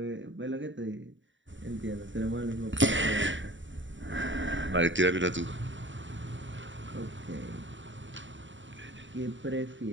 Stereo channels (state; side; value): late; left; 0.55 ms